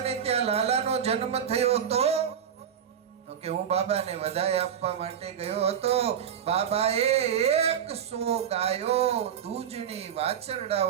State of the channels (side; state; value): left; quieter; 8.6 dB